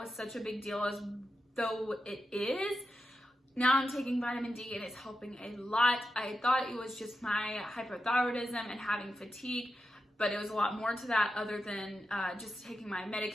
such a big deal as though it is. Now I'm taking vitamin D and it's helping a lot. I thought it was just my hypothyroidism and having fatigue, but it was a lot more to that other than just taking my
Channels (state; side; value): normal; both; correlation 0.89